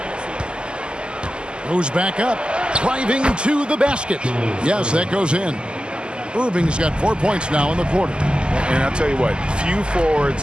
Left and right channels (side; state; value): left; late; 0.049 ms